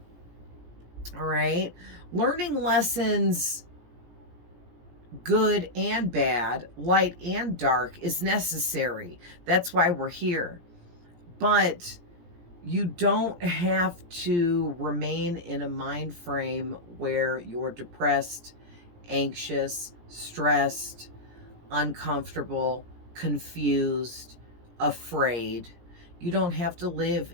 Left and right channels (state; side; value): late; left; 17 ms